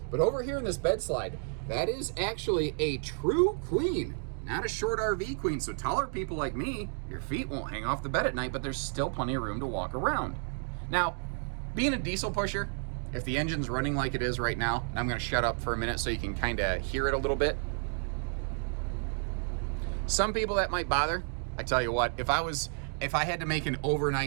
but over here in this bed slide, that is actually a true queen, not a short RV queen. So taller people like me, your feet won't hang off the bed at night, but there's still plenty of room to walk around. Now, being a diesel pusher, if the engine's running like it is right now, and I'm gonna shut up for a minute so you can kind of hear it a little bit. Some people that might bother. I tell you what, if I had to make an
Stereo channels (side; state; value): left; silent; 57 dB below the other